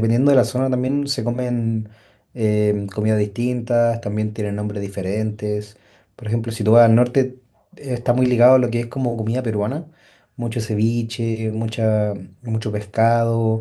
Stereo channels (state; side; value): identical; both; correlation 1.00